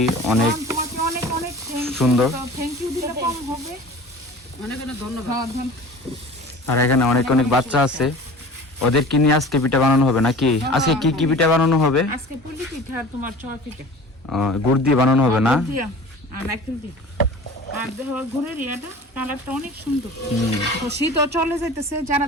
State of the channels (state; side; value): normal; both; correlation 0.41